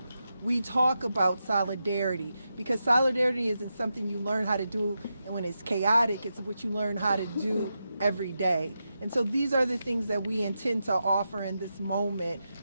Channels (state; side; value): inverted; both; correlation -0.88